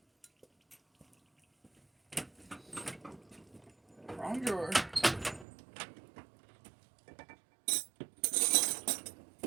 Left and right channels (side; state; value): left; drops out; at 5.5 s